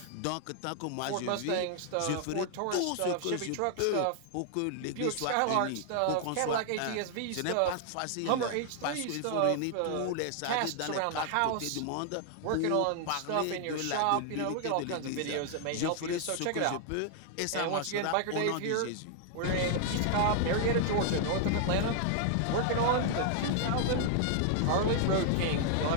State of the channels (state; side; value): different; both; correlation 0.00